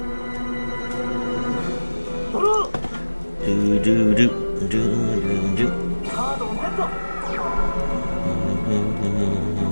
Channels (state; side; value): inverted; both; correlation -1.00